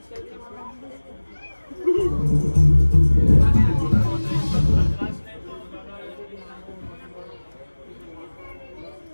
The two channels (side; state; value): both; inverted; correlation -1.00